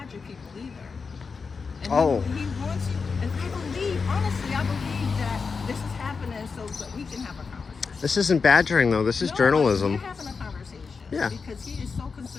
people either. And Oh. he wants you. And I believe, honestly, I believe that this is happening so that we can have a conversation. This isn't badgering though. This is No, journalism. We're having a conversation. Yeah. Because he is so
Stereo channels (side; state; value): right; quieter; 5.0 dB